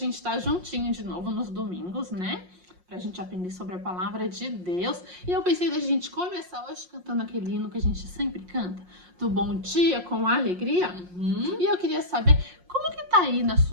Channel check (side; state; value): left; late; 5.6 ms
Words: estar juntinho de novo nos domingos, né? Pra gente aprender sobre a palavra de Deus. E eu pensei da gente começar hoje cantando aquele hino que a gente sempre canta, do Bom Dia com Alegria. E eu queria saber como que tá aí na